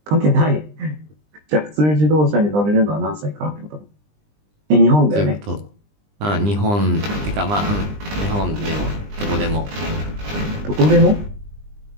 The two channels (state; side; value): late; left; 20 ms